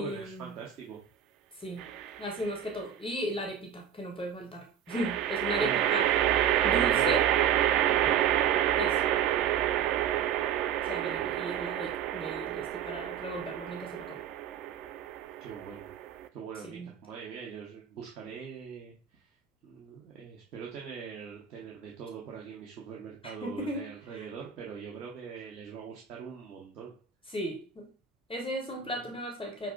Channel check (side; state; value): left; quieter; 8.5 dB